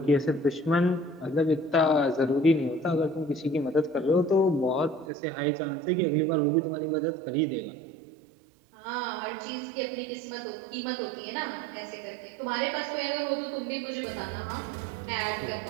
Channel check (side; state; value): left; drops out; at 5.1 s